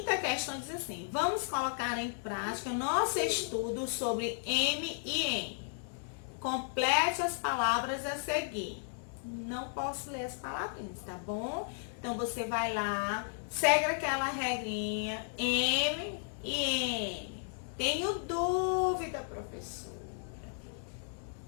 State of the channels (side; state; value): right; silent; digital silence